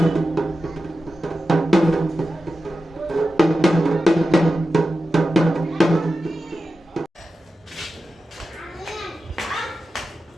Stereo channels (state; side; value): normal; both; correlation 0.92